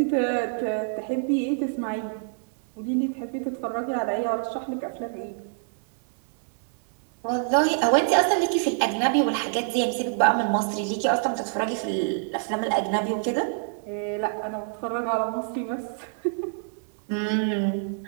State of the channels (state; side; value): silent; left; digital silence